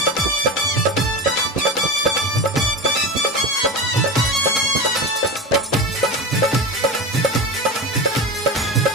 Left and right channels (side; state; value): both; normal; correlation 0.25